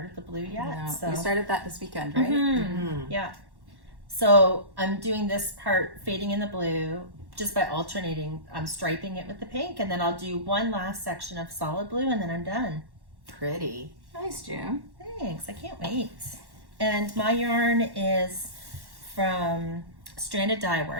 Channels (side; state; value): left; late; 1.1 ms